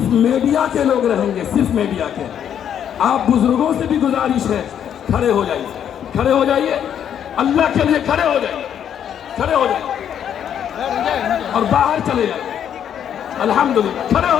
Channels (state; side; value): quieter; right; 9.2 dB